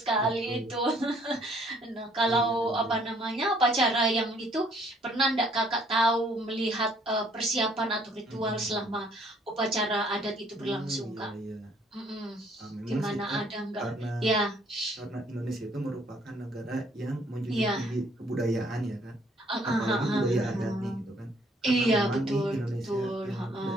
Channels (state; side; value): normal; both; correlation 0.63